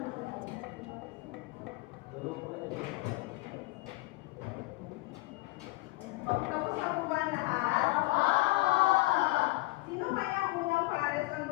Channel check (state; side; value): quieter; right; 22.2 dB